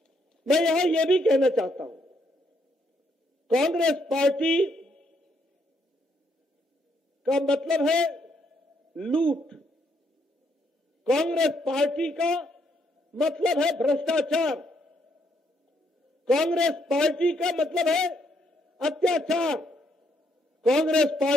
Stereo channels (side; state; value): both; normal; correlation 0.73